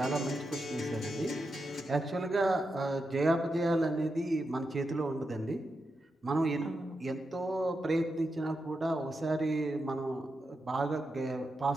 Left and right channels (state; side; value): normal; both; correlation 0.87